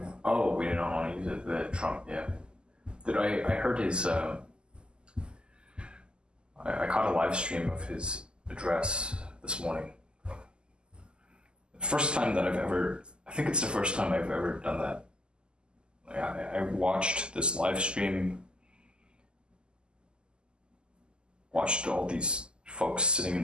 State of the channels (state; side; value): late; left; 0.048 ms